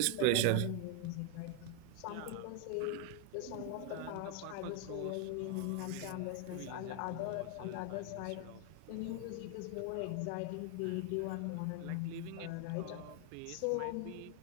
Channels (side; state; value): both; different; correlation 0.01